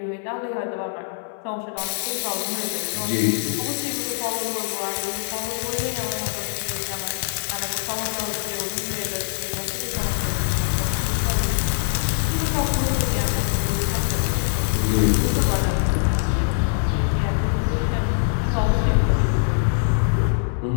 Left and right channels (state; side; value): silent; right; 63 dB below the other